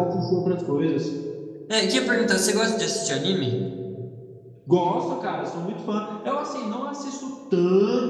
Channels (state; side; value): identical; both; correlation 1.00